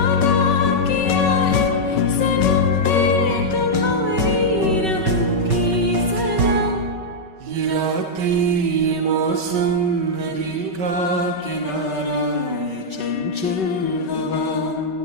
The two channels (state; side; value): late; left; 5.3 ms